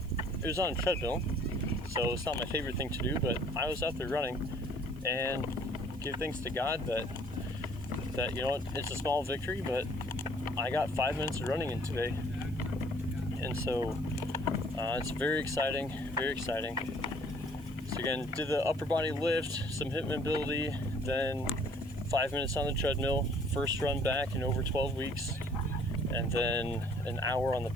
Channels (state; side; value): noise; right; hiss, 26 dB below the sound